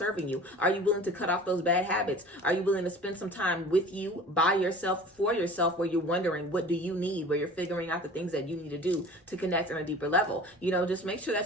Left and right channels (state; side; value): normal; both; correlation 0.42